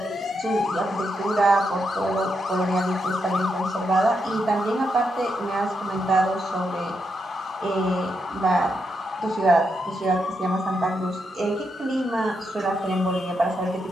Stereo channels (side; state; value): both; normal; correlation 0.82